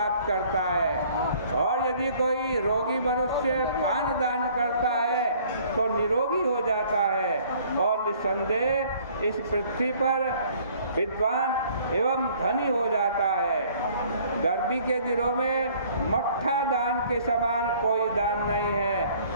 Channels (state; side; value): inverted; both; correlation -0.56